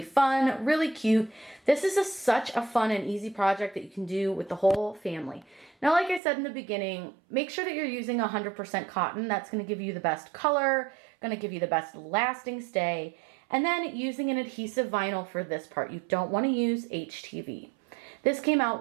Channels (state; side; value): drops out; left; at 6.2 s